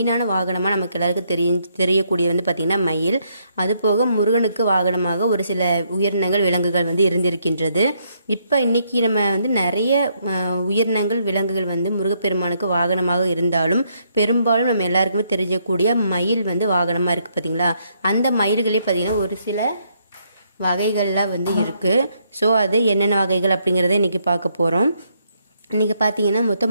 வாகனமாக நமக்கு எல்லாருக்கும் தெரியக்கூடிய வந்து பார்த்திங்கன்னா மயில். அது போக முருகனுக்கு வாகனமாக ஒரு சில உயிரினங்கள் விலங்குகள் வந்து இருந்திருக்கின்றது. இப்போ இன்றைக்கி நம்ம வந்து நிறைய உயிரினங்கள் விலங்குகள் வந்து முருகப்பெருமானுக்கு வாகனமாக இருந்தாலும் பெரும்பாலும் நம்ம எல்லாருக்குமே தெரியக்கூடிய மயில் வந்து வாகனமாக இருக்குது பார்த்திங்களா. அந்த மயில்களே பார்த்திங்கன்னா ஒரு சில வகைகள்லாம் வந்து இருக்குது. ஸோ அது என்னென்ன வகைகள் அப்படிங்கிறத இன்றைக்கி பார்க்க போகிறோம். இன்றைக்கி பார்த்தீங்கன்னா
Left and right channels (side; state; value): both; inverted; correlation -0.73